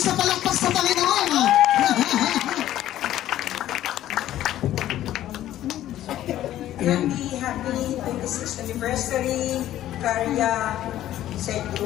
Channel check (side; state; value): right; quieter; 13.0 dB